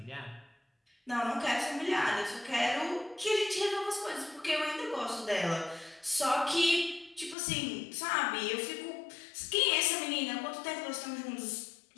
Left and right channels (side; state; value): right; drops out; at 7.4 s